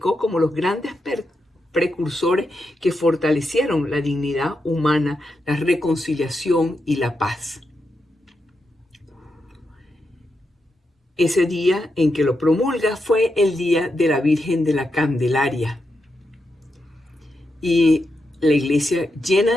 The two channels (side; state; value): both; normal; correlation 0.85